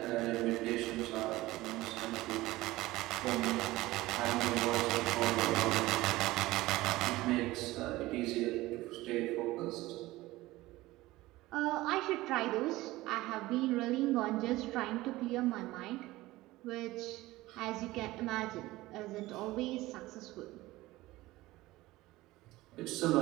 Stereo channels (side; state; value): left; quieter; 18.3 dB